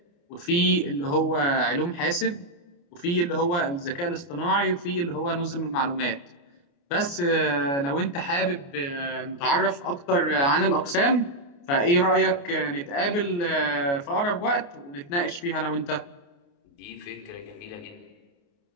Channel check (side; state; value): right; late; 29 ms